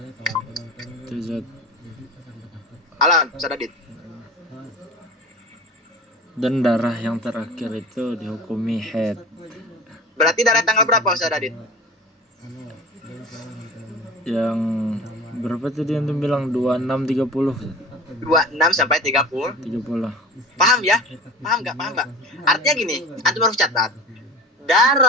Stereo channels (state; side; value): normal; both; correlation 0.36